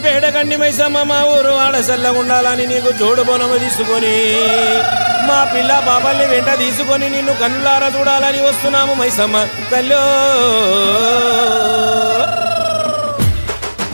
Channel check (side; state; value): both; inverted; correlation -1.00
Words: పేడ గండి మైసమ్మ మా ఊరు ఆడసల్లగుండాలని నీకు జోడు బోనము తీసుకొని మా పిల్ల బాబాల్ని వెంట తీసుకొని నిన్ను కన్నులారా చూడాలని వస్తున్నాము మైసమ్మ తల్లో